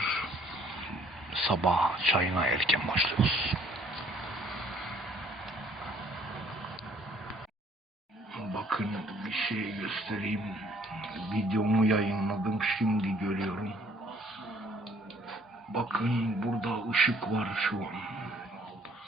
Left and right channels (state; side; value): normal; both; correlation 0.60